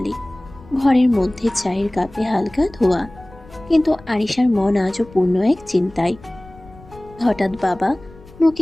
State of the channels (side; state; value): left; noise; rumble, 22 dB below the sound